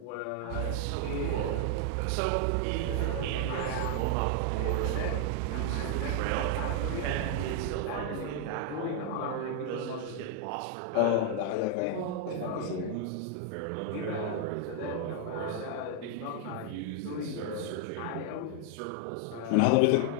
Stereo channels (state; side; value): different; both; correlation 0.00